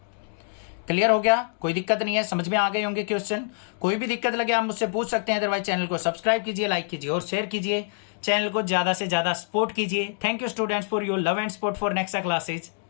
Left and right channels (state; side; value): silent; right; digital silence